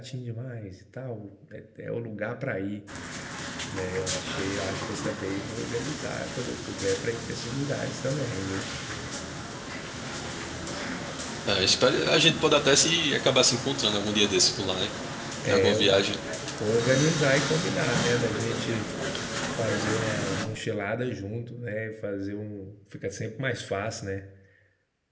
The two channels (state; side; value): identical; both; correlation 1.00